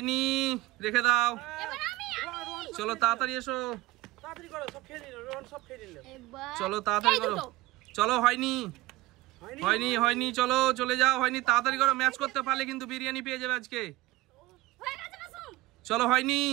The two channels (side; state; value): left; quieter; 17.6 dB